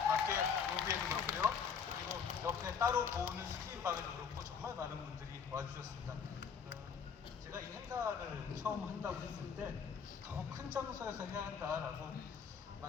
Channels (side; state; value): right; quieter; 6.5 dB